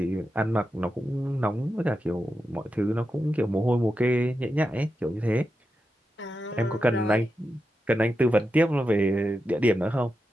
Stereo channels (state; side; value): normal; both; correlation 0.89